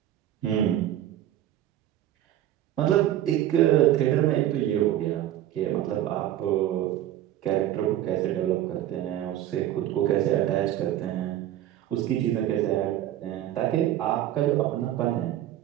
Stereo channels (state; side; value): quieter; left; 12.7 dB